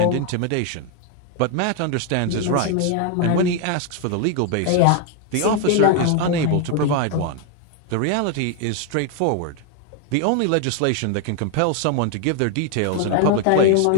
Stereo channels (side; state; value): both; different; correlation 0.00